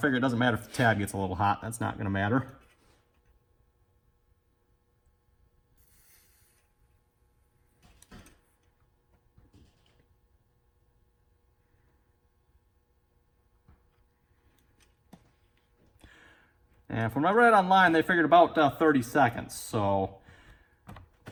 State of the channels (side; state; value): both; identical; correlation 1.00